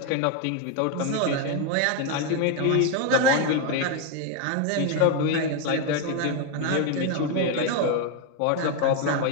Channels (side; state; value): both; different; correlation 0.01